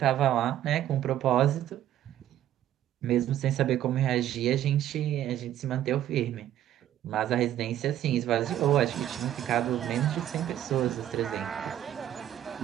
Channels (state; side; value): quieter; left; 11.9 dB